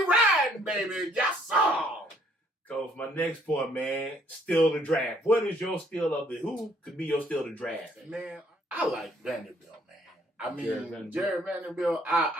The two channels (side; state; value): both; normal; correlation 0.64